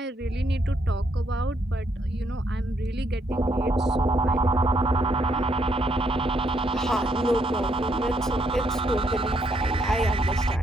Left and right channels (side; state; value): both; normal; correlation 0.74